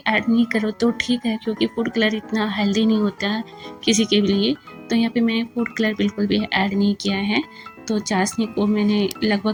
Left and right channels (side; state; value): both; identical; correlation 1.00